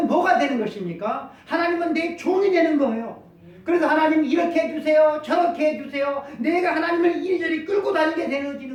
뭐가 되는 것입니까? 하나님은 내 종이 되는 거예요. 그래서 하나님 이렇게 해주세요, 저렇게 해주세요. 내가 하나님을 이리저리 끌고 다니게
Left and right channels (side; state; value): both; identical; correlation 1.00